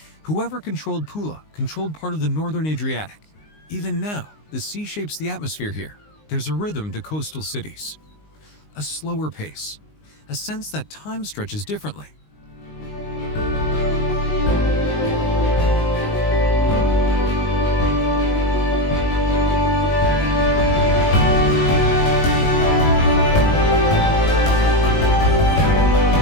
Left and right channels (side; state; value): right; late; 19 ms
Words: Whoever controlled Pula controlled part of the northern Adriatic. Even now, the sea shapes the atmosphere here. There's a rhythm to coastal cities. A slower pace. A sense that time stretches differently.